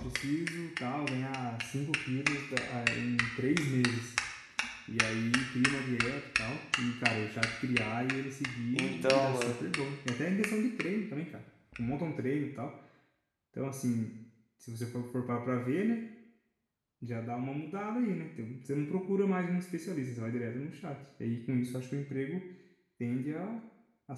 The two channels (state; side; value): identical; both; correlation 1.00